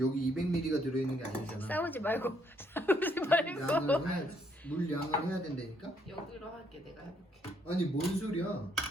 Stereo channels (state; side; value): normal; both; correlation 0.70